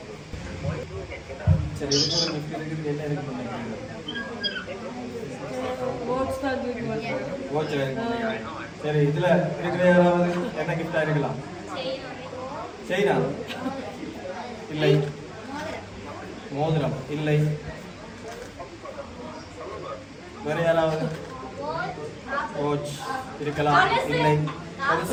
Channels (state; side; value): identical; both; correlation 1.00